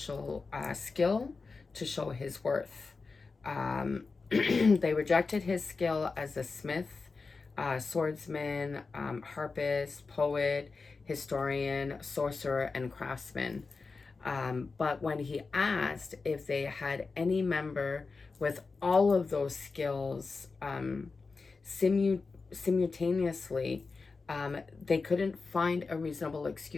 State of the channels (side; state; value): right; quieter; 4.3 dB